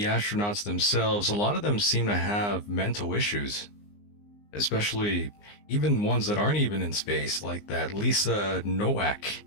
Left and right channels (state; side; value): late; right; 19 ms